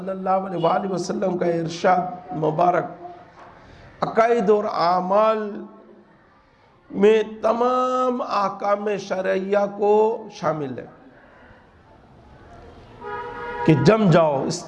اللہ علیہ وآلہ وسلم کا ارشاد مبارک عقائد اور اعمال میں تمام احکام شرعیہ کو شامل ہے کہ جم جاؤ،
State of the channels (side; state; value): both; identical; correlation 1.00